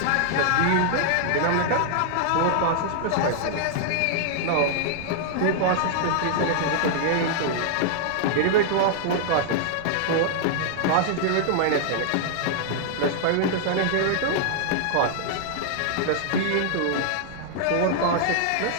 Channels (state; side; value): different; both; correlation -0.01